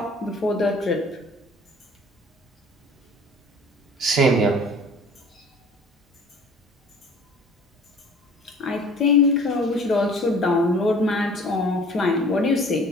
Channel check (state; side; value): normal; both; correlation 0.48